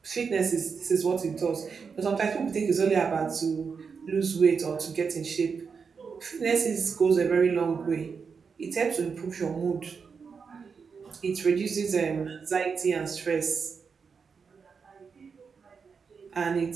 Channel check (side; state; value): left; quieter; 5.7 dB